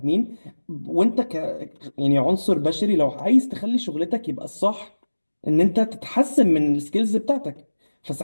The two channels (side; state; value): both; inverted; correlation -1.00